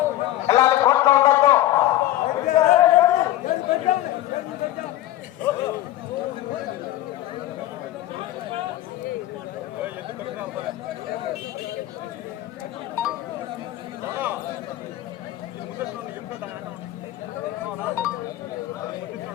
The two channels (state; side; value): quieter; right; 14.4 dB